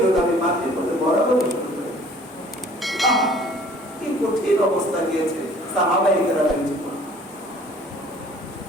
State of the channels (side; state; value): both; normal; correlation 0.52